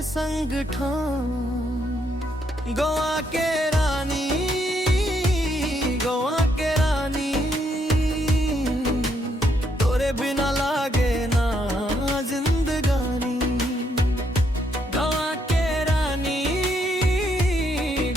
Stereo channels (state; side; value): normal; both; correlation 0.74